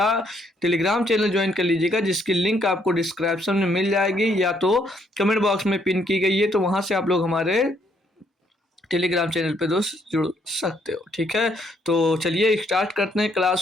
टेलीग्राम चैनल ज्वाइन कर लीजिएगा, जिसकी लिंक आपको डिस्क्रिप्शन में मिल जाएगी या तो कमेंट बॉक्स में पिन की गई है, तो वहां से आप लोग हमारे टेलीग्राम चैनल पे दोस्त जुड़ सकते हो, ठीक है। तो चलिए स्टार्ट करते हैं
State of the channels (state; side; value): normal; both; correlation 0.70